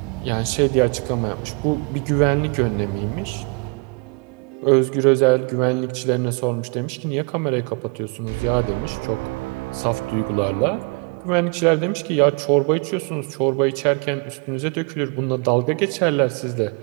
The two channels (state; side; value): quieter; left; 33.1 dB